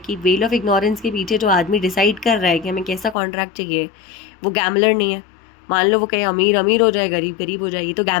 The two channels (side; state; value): right; drops out; at 3.2 s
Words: वेल ऑफ इग्नोरेंस के पीछे जो आदमी डिसाइड कर रहा है कि हमें कैसा कॉन्ट्रैक्ट चाहिए, वो गैम्बलर नहीं है। मान लो वो कहे अमीर अमीर हो जाए, गरीब गरीब हो जाए, ये तो